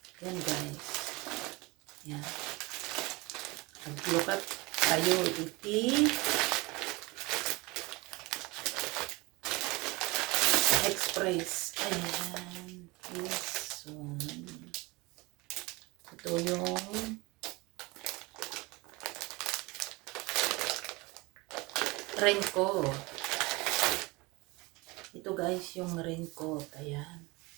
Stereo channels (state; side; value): quieter; left; 24.0 dB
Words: Ayan guys. Ayan. Maglukat tayo iti Express. Ayan. This one. Ito yung raincoat. Ito guys yung raincoat. Ayan.